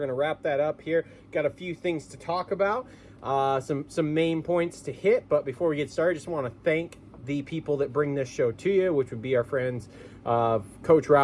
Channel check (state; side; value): identical; both; correlation 1.00